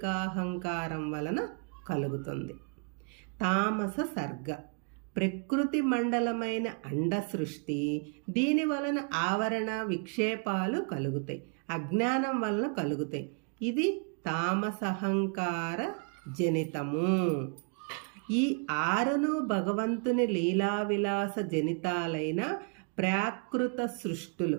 వలన కలుగుతుంది. తామస సర్గ. ప్రకృతి మండలమైన అండ సృష్టి. దీని వలన ఆవరణ విక్షేపాలు కలుగుతాయి, అజ్ఞానం వలన కలుగుతాయి. ఇది తామసహంకార జనితము. ఈ 6ను భగవంతుని లీలావిలాస జనితాలైన ప్రాకృత సృష్టులు.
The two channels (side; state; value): left; quieter; 37.4 dB